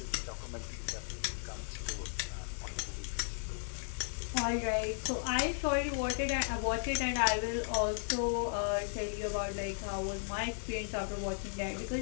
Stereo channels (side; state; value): right; silent; digital silence